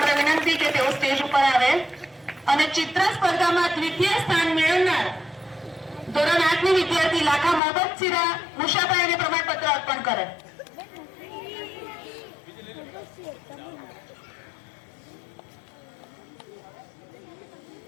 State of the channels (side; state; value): right; drops out; at 7.6 s